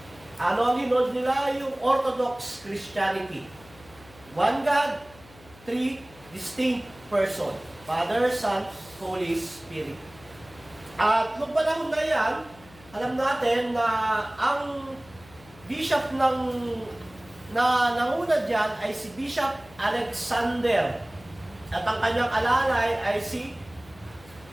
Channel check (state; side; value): noise; left; hum, 23 dB below the sound